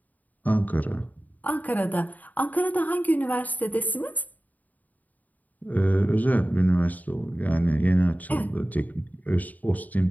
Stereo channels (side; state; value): right; late; 0.078 ms